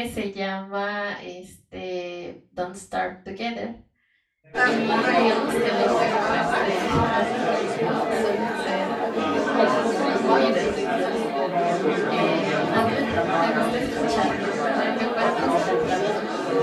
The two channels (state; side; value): identical; both; correlation 1.00